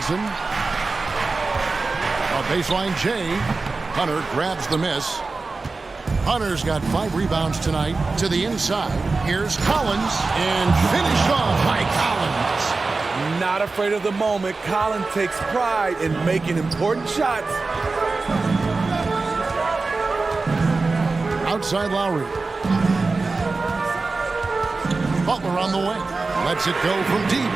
A baseline J. Hunter grabs the miss. Hunter's got 5 rebounds tonight. To the inside. Here's Collins. And finished off by Collins. Not afraid of the moment. Collins takes pride in making important shots. Outside Lowry. Butler on the wing. Lets it go from deep.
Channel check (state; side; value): quieter; left; 3.8 dB